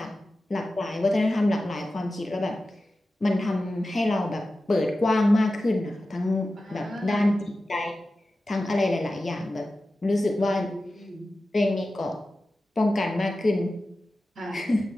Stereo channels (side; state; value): both; normal; correlation 0.94